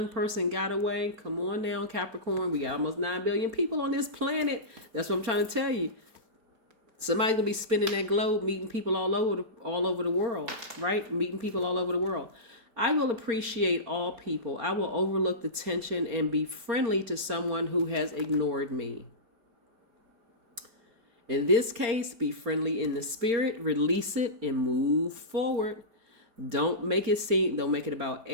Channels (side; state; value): left; late; 4.3 ms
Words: person got away, come on down, Capricorn. We got almost 9 billion people on this planet. That's what I'm trying to tell you. Somebody's going to be spinning that globe, meeting people all over the world, right? Meeting people all over the world. I will appreciate all people. I will overlook the tension and be friendly to someone who has ignored me. In this case, be friendly in the spirit, release it, and move forward. Don't make it about